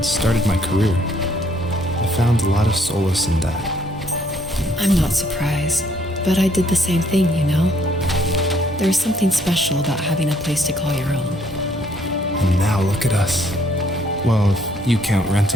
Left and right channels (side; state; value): both; normal; correlation 0.66